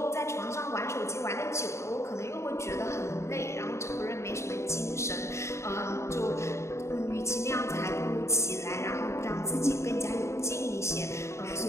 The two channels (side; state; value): right; late; 0.14 ms